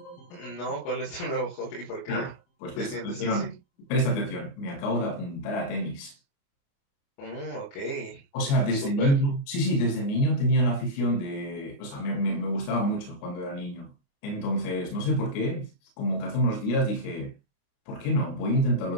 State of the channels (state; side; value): late; right; 29 ms